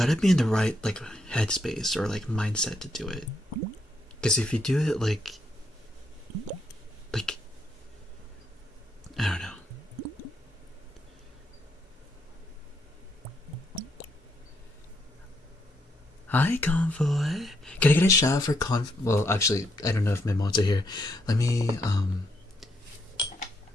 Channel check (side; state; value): both; normal; correlation 0.76